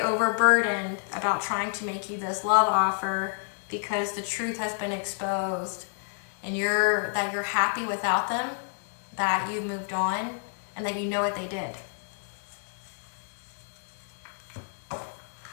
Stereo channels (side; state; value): right; silent; 59 dB below the other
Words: about trying to make you this love offer because the truth has been exposed and that you're happy without them, that you've moved on, and that you know what they did.